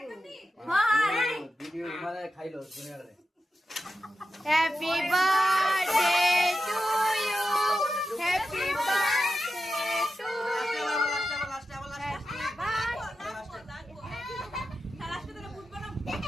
ভিডিও মানে খাইলো দুনিয়ারে happy birthday to you happy birthday to you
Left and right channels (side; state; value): both; normal; correlation 0.90